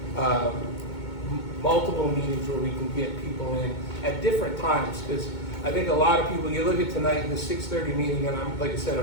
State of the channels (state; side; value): late; right; 2.2 ms